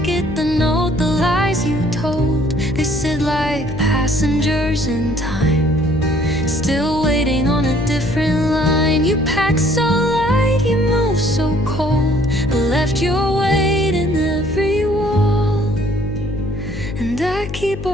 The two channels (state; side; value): noise; left; hum, 9 dB below the sound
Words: the note, the lies you told. They sit like passengers in time, still waiting on a different line. You pack so light, you move so cold, but left your weight in every wall. And I keep